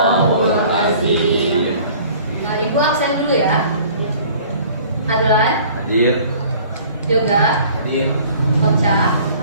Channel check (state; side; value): inverted; both; correlation -0.51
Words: azim. Ibu absen dulu ya. Adlan, Hadir. Yoga, Hadir. Ocha,